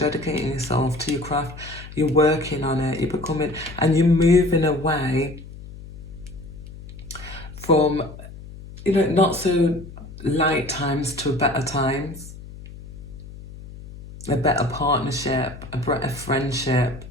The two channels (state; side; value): noise; left; hum, 15 dB below the sound